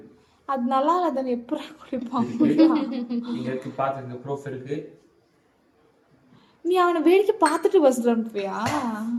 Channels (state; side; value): identical; both; correlation 1.00